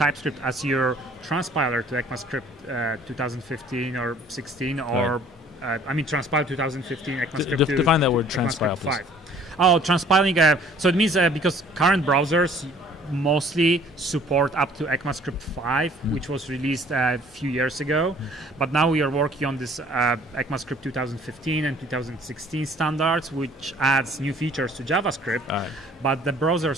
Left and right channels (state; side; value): normal; both; correlation 0.55